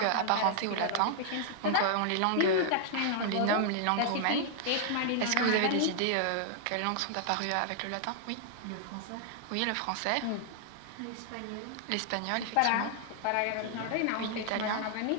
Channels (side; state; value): both; different; correlation 0.00